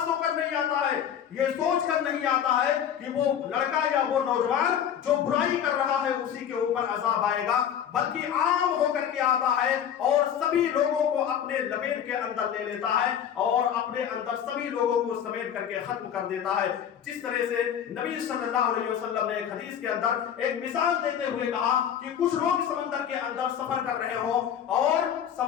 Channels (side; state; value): right; quieter; 9.1 dB